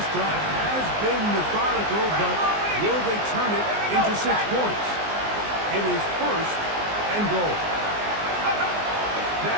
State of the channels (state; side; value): late; left; 19 ms